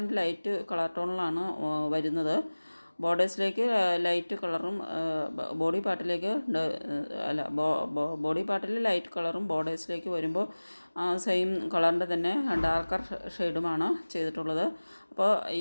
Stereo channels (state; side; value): inverted; both; correlation -1.00